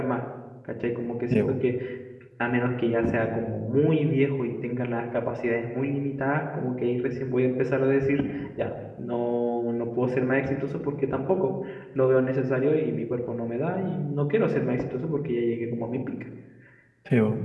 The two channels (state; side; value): identical; both; correlation 1.00